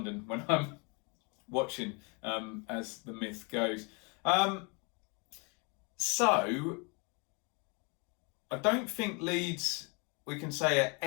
when I'm watching, as the myth goes. So I don't think Leeds, we can say, are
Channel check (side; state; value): right; quieter; 32.6 dB